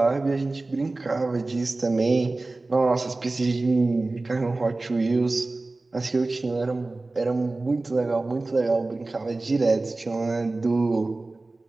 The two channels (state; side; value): quieter; left; 3.2 dB